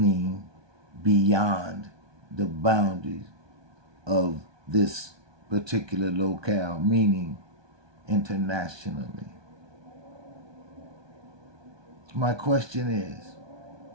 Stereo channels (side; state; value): left; late; 1.2 ms